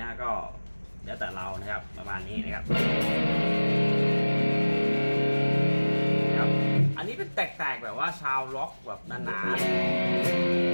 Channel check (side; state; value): both; inverted; correlation -1.00